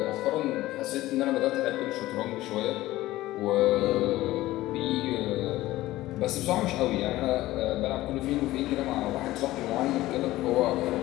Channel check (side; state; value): right; quieter; 16.7 dB